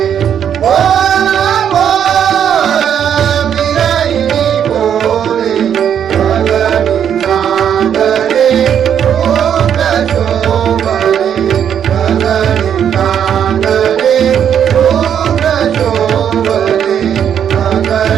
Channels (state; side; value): quieter; left; 8.8 dB